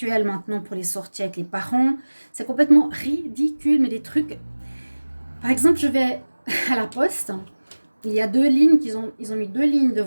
maintenant pour les sorties avec les parents. C'est complètement ridicule, mais des trucs... Par exemple, je vais à la poste, il y a 2 lignes, ils ont mis 2 lignes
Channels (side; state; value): both; inverted; correlation -1.00